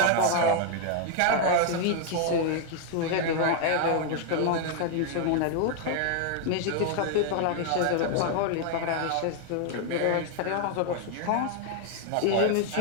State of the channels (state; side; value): different; both; correlation 0.00